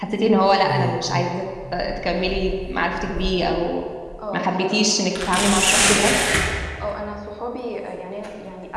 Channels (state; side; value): identical; both; correlation 1.00